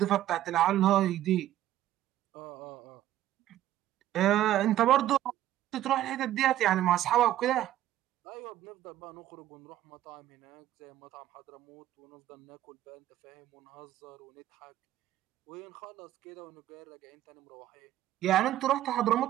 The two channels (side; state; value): left; quieter; 13.2 dB